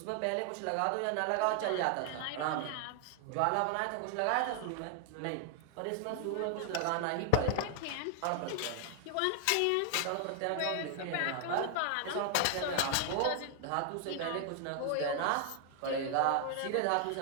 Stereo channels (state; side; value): different; both; correlation 0.00